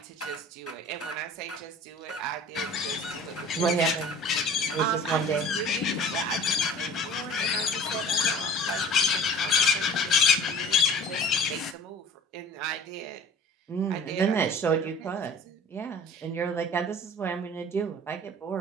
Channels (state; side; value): normal; both; correlation 0.45